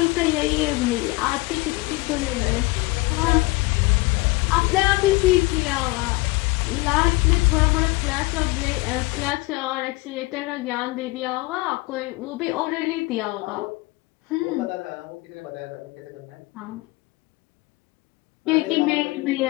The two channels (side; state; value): right; quieter; 22.7 dB